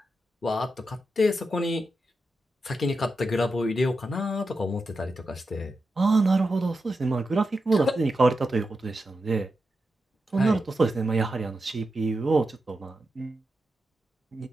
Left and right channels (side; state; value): both; normal; correlation 0.88